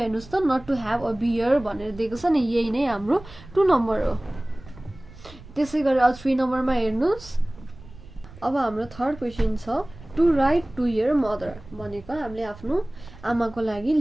हेर्नुहोस् त not to have a beer भनेर दिएको छ नि, यही नै हाम्रो 2 नम्बर हो। त्यसै गरेर 3 नम्बरमा हेर्नुहोस्। अब हाम्रो थर्ड क्वेसन छ to write to your mother भनेको हामीले आफ्नो आमाको लागि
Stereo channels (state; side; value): noise; right; rumble, 19 dB below the sound